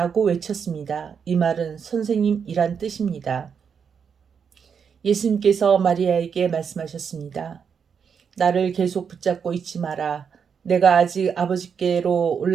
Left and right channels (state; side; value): quieter; left; 6.7 dB